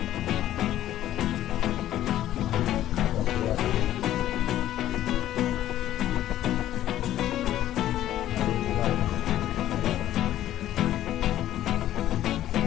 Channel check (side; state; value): right; quieter; 12.9 dB